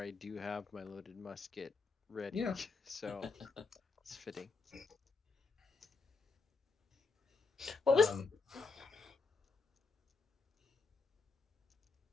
do have my loaded musket ready, Yeah. so it's fitting. What was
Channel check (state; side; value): quieter; right; 4.3 dB